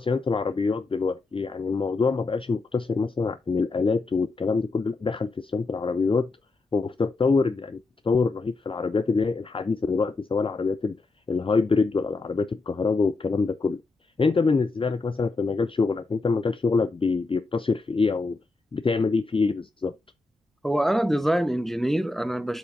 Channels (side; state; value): right; quieter; 3.4 dB